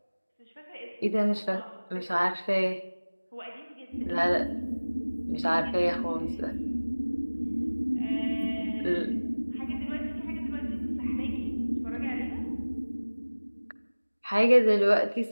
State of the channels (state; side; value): inverted; both; correlation -1.00